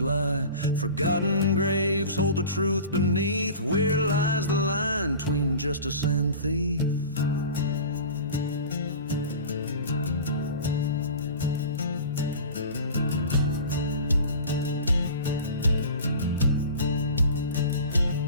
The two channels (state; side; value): inverted; both; correlation -0.37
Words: lie. Forgotten graves hold the truth beneath. Where lies the line between justice and thief?